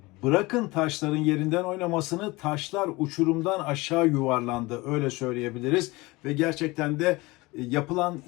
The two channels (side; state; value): right; quieter; 22.4 dB